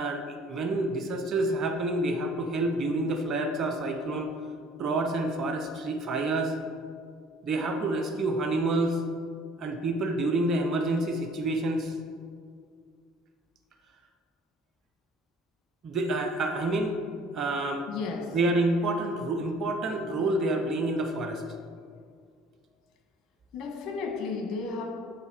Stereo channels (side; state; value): both; normal; correlation 0.54